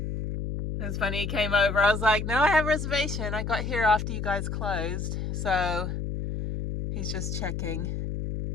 It was funny, he came over. I was like, no, I have a reservation. I got here after you guys closed. So he's just checking.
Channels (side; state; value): left; noise; hum, 4 dB below the sound